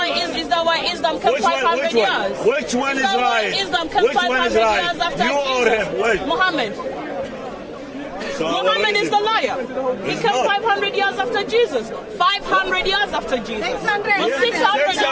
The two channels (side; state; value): both; identical; correlation 1.00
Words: Islam comes 500 years? Which one is right? Which one is right? You or him? Which? Muhammad. So Muhammad is the liar. He came 500 years after Jesus. 500 years after Jesus.